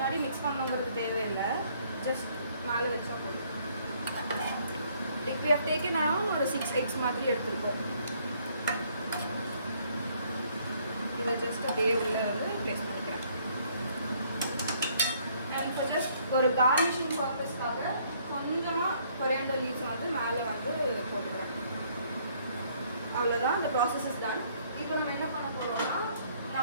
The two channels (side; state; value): both; inverted; correlation -0.64